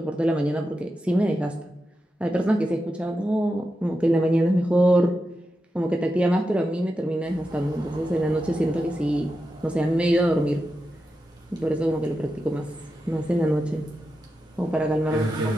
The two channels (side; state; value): both; normal; correlation 0.89